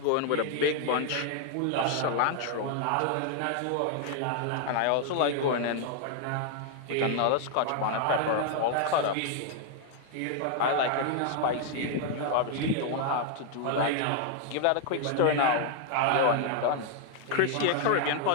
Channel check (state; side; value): different; both; correlation 0.00